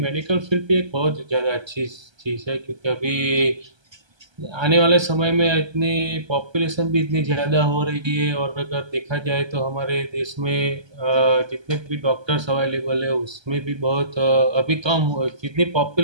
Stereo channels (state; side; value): late; left; 1.3 ms